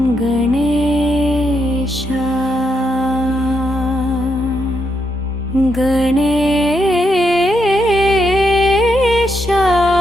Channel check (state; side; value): normal; both; correlation 0.80